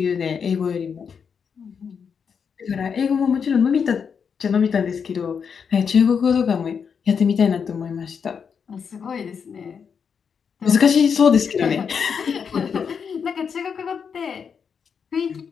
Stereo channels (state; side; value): quieter; right; 6.6 dB